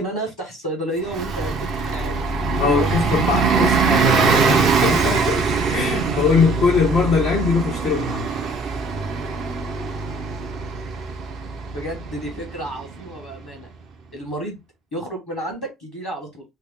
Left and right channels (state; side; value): normal; both; correlation 0.55